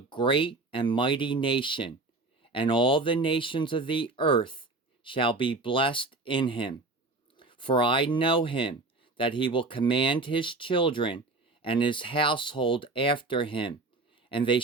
and mighty nation, and all the nations of the earth shall be blessed in him? For I know him, that he will command his children and his household after him, and they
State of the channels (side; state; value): left; quieter; 3.3 dB